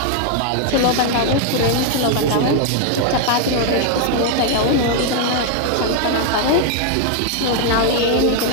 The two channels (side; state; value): both; different; correlation 0.00